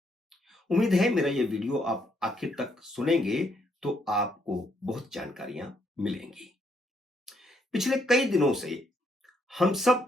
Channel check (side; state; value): both; normal; correlation 0.73